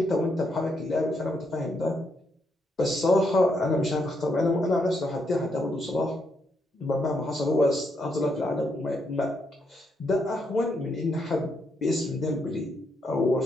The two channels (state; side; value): normal; both; correlation 0.78